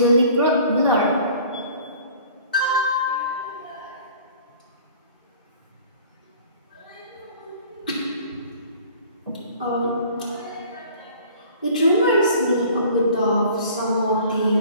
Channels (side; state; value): both; inverted; correlation -0.49